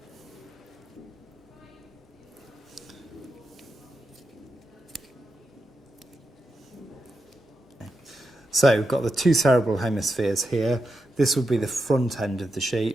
So we've got the two cerebral hemispheres here. This would be the front end of the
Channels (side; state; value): both; normal; correlation 0.87